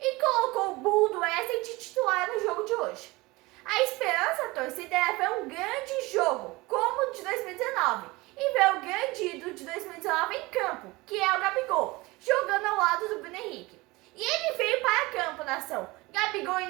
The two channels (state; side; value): quieter; left; 22.2 dB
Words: colocou o burro do Wesley de titular no jogo de hoje. A esperança da torcida era ver um grande jogo, como o de 2019, e ver o grande ídolo de 2019 em campo, que é o Gabigol, jogando ao lado do Bruno Henrique. E ele veio para campo, nação. Gabigol